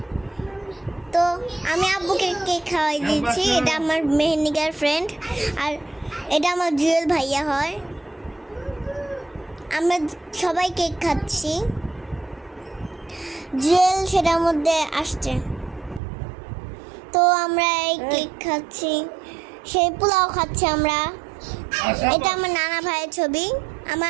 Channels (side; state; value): left; drops out; at 16.0 s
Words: তো আমি আব্বুকে কেক খাওয়াই দিয়েছি। এটা আমার মেহেন্দিকার ফ্রেন্ড, আর এটা আমার জুয়েল ভাইয়া হয়। আমরা সবাই কেক খাচ্ছি। জুয়েল সেটার মধ্যে আসছে। তো আমরা এই কেক খাচ্ছি, সেই পোলাও খাচ্ছি আমরা। এটা আমার নানা ভাইয়ের ছবি,